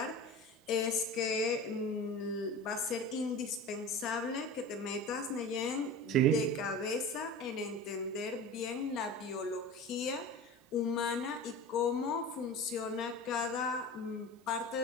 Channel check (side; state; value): both; normal; correlation 0.33